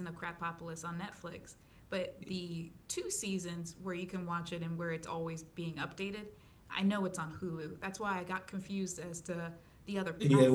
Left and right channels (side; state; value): both; identical; correlation 1.00